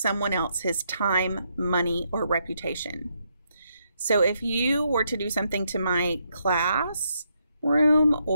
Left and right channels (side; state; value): both; inverted; correlation -0.77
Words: else his time, money, or reputation. So if you were to do something to my classroom